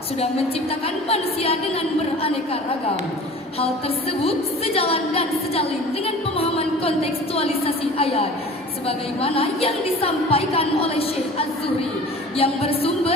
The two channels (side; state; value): both; normal; correlation 0.42